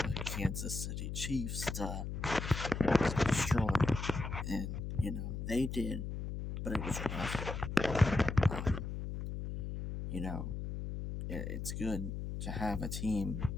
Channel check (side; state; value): left; noise; hum, 5 dB below the sound